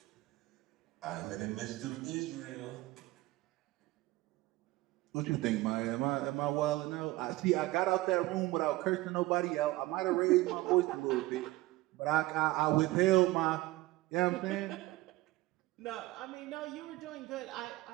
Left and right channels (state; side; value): quieter; left; 19.2 dB